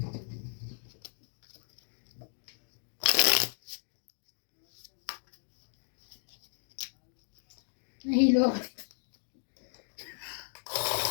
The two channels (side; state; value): right; silent; digital silence